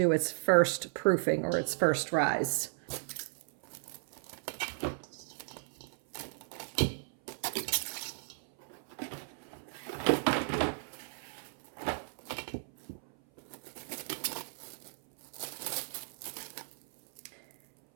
its first proofing or its first rise.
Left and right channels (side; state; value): left; silent; 54 dB below the other